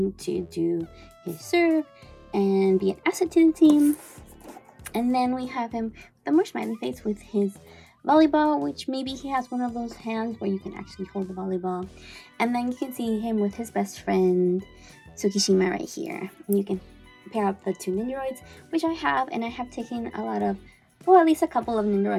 to do his serve and be an asset to the team. And then we have him with a more smiley face with his volleyball, which maybe he has one of those hands where you can actually hold the volleyball. And then you can see him with his best friend Tsukishima right here. And you can pair up the two Nendoroids, which I have, and I have taken a lot of, well, at least a couple of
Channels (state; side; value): identical; both; correlation 1.00